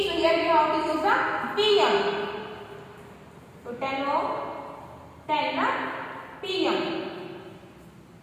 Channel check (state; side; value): identical; both; correlation 1.00